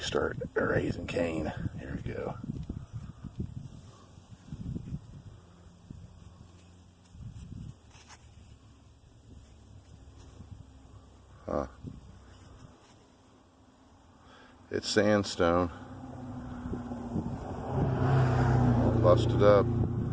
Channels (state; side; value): identical; both; correlation 1.00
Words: start raising Cain. Here we go. Huh. It's sandstone. Busted up.